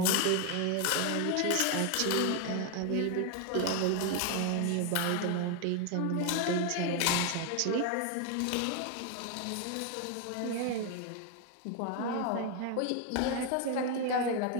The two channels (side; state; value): both; different; correlation 0.01